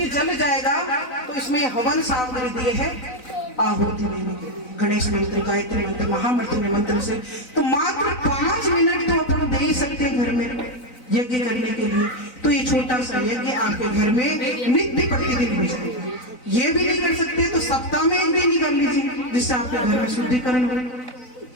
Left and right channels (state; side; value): late; right; 4.0 ms